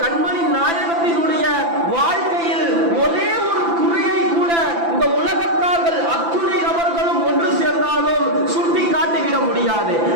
கண்மணி நாயகத்தினுடைய வாழ்க்கையில் ஒரே ஒரு குறையை கூட இந்த உலகத்தார்கள் அத்துணை நபர்களும் ஒன்று சேர்ந்தாலும் சுட்டி காட்டிவிட முடியாது.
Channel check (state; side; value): late; left; 5.9 ms